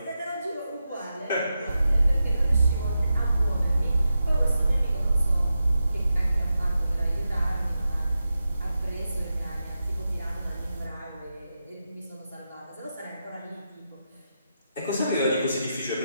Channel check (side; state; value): both; inverted; correlation -0.89